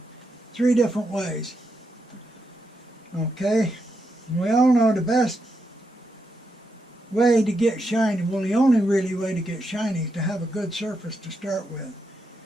3 different ways. Okay, we all know the best way to get shiny, well, the only really way to get shiny is to have a good surface to start with.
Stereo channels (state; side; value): normal; both; correlation 0.83